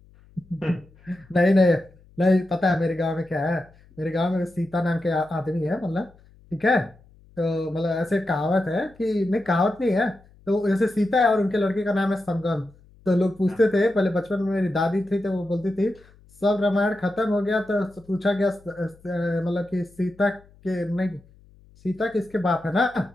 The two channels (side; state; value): left; noise; hum, 27 dB below the sound